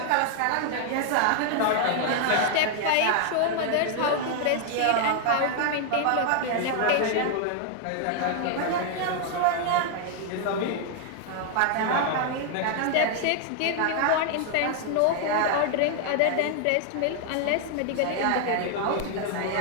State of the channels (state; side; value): different; both; correlation 0.00